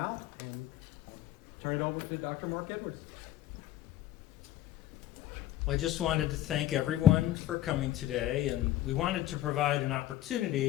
And I'll turn it over to Dr. Marc Edwards. Well, I just wanted to thank everyone for coming today, and we wanted to provide an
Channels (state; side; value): quieter; right; 13.2 dB